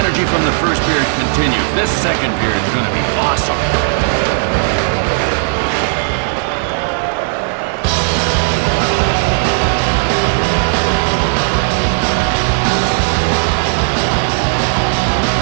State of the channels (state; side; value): silent; left; digital silence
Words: from the first period continues, this second period is going to be awesome.